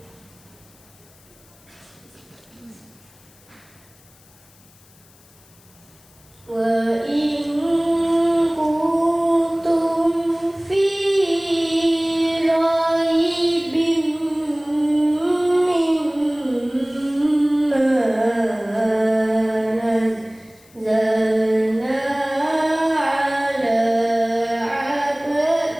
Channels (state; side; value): noise; left; hiss, 28 dB below the sound